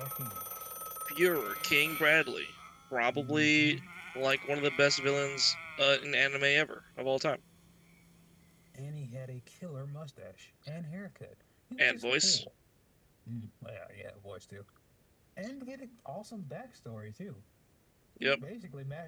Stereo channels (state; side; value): identical; both; correlation 1.00